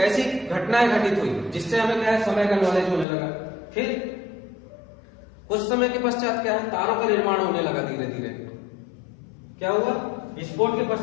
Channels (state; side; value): drops out; right; at 3.1 s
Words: घटनाएं घटित हुई जिससे हमें क्या है, समय का नॉलेज होने लगा। फिर कुछ समय के पश्चात क्या है, तारों का निर्माण होने लगा धीरे धीरे। क्या हुआ, विस्फोट के